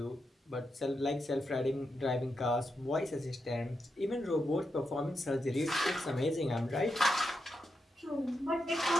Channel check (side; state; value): both; normal; correlation 0.85